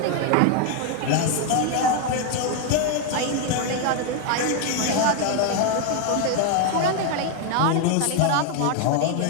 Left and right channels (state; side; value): different; both; correlation 0.01